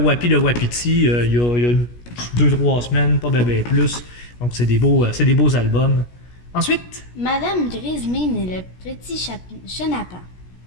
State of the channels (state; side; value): late; right; 17 ms